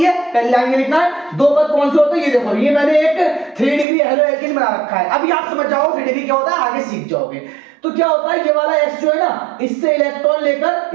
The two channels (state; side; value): drops out; left; at 3.9 s